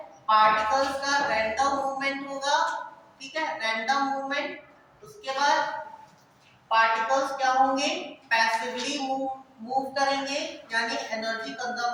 particles का random movement होगा, ठीक है, रैंडम मूवमेंट। उसके बाद पार्टिकल्स क्या होंगे, पैसिवली मूव करेंगे, यानी एनर्जी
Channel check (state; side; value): identical; both; correlation 1.00